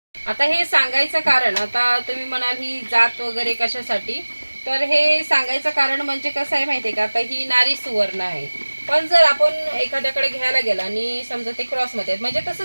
आता हे सांगायचं कारण, आता तुम्ही म्हणाल ही जात वगैरे कशासाठी, तर हे सांगायचं कारण म्हणजे कसं आहे माहिती आहे का, आता ही नारी सुवर्ण आहे. पण जर आपण एखाद्याकडे घ्यायला गेला आणि समजा ते क्रॉसमध्ये म्हणजे तसं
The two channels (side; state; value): both; inverted; correlation -1.00